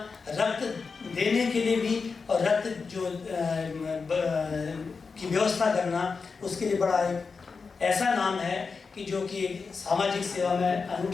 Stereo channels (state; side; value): quieter; right; 4.9 dB